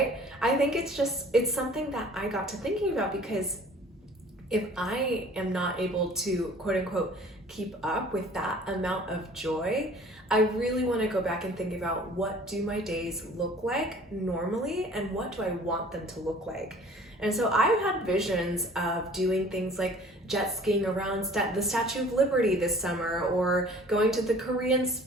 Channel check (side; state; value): both; normal; correlation 0.50